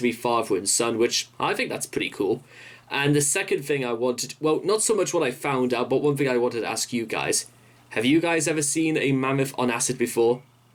be father and son, which I think that's pretty cool. And the second thing I wanted, well, not so much what I found out, but one thing I wanted to ask you guys. Have you guys ever seen a mammoth on acid before?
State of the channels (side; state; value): both; identical; correlation 1.00